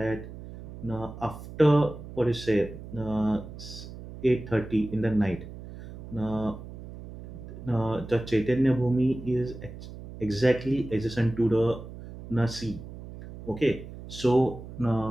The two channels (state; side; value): noise; right; hum, 13 dB below the sound